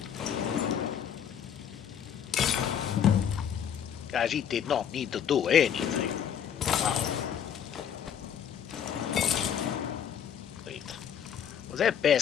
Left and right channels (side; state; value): right; quieter; 8.6 dB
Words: Khajiit did not need to do anything. Wow. Wait. Was that